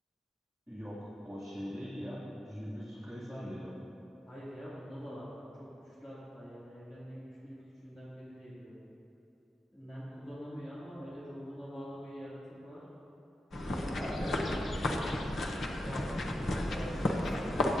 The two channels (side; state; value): both; normal; correlation 0.87